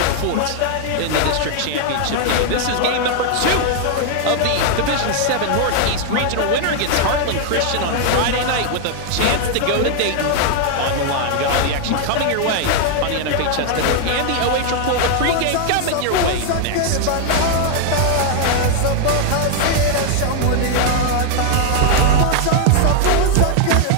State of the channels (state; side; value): different; both; correlation 0.00